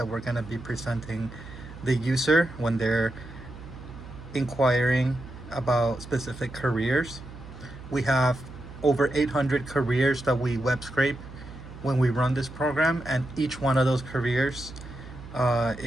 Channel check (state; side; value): noise; right; hum, 15 dB below the sound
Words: we're going to be presenting the user when they're inquiring about specific careers. We have over 800 careers that we web scrape when we run this program, and each one of those careers